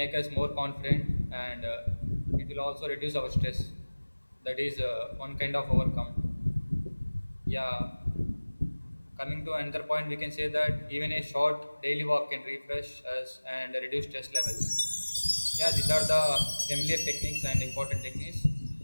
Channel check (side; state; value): both; inverted; correlation -1.00